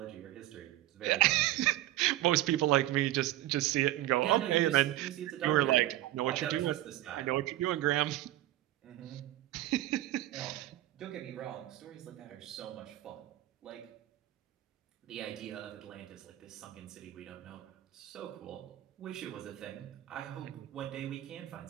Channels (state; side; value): quieter; left; 15.2 dB